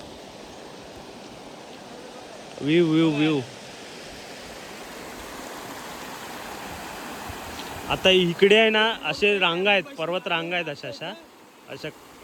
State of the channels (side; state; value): both; identical; correlation 1.00